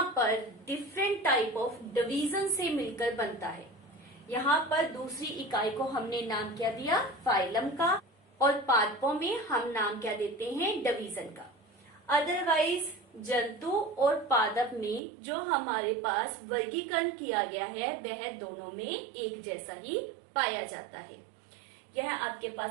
पर डिफरेंट टाइप ऑफ डिवीजन से मिलकर बनता है। यहाँ पर दूसरी इकाई को हमने नाम क्या दिया? फाइलम का। और पादपों में हम नाम क्या देते हैं? डिवीजन का। अदरवाइज जंतु और पादप में जो हमारे पास वर्गीकरण किया गया है वह दोनों में एक जैसा ही पाया जाता है। यह आपके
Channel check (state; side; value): drops out; left; at 15.0 s